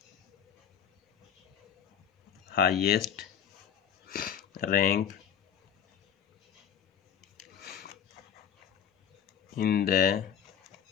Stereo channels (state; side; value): quieter; right; 8.5 dB